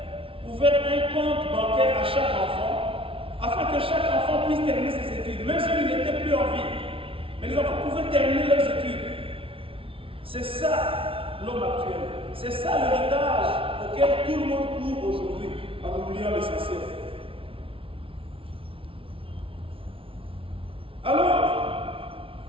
ouvert un compte bancaire à chaque enfant, afin que chaque enfant puisse terminer ses études, même s'il n'était plus en vie. Mais les enfants pouvaient terminer leurs études. C'est ça l'homme actuel. C'est ça l'héritage auquel tout le monde court aujourd'hui, en oubliant l'essentiel. Alors,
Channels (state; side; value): late; left; 0.26 ms